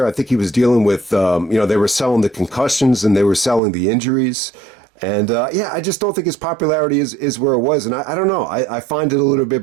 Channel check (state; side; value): drops out; left; at 3.6 s